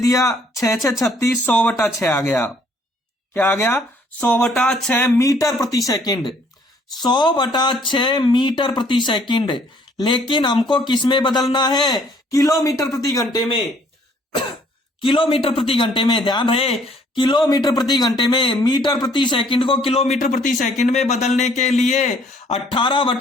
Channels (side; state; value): both; normal; correlation 0.62